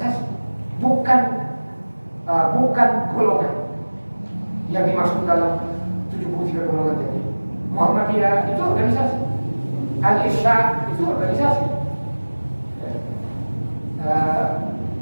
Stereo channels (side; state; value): both; inverted; correlation -1.00